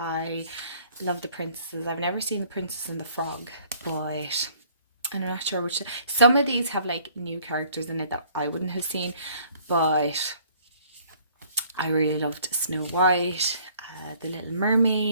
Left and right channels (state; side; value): inverted; both; correlation -0.58